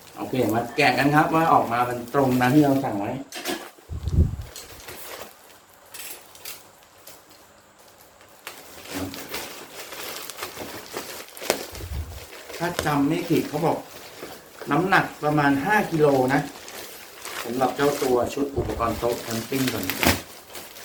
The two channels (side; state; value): both; identical; correlation 1.00